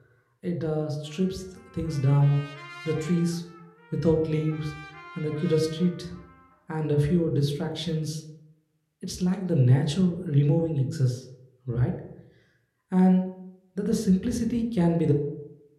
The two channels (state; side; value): identical; both; correlation 1.00